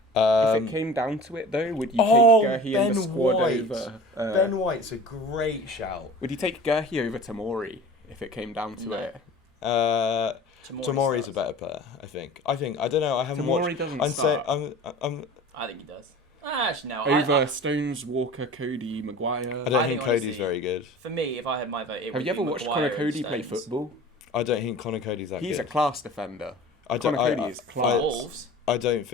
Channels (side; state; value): both; normal; correlation 0.40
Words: If it came down to it, though, would you take Gurhey in the squad over? Ben White's a great shout. Would you take Gurhey over Tamori if it came down to No. it? Tamori's a better player, I think. I don't know. I haven't Tamori watched. doesn't I'm say start. I'm. I think he does. Actually, no. Over Stones, Walker, Cody, Maguire. I don't I think think Cody's honestly- very good. For me, if I had my vote, it Have would you ever be watched Maguire Connor and Cody play Stones. football? I don't think Connor Cody's that He's a good. class defender. I don't. Connor Cody is For class. Wolves. I don't